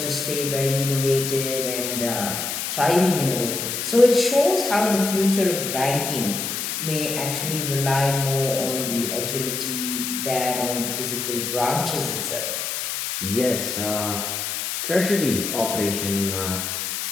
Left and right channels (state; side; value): noise; left; hiss, 3 dB below the sound